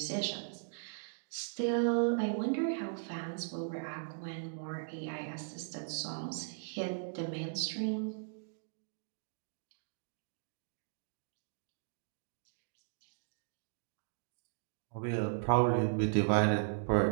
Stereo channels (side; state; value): left; silent; digital silence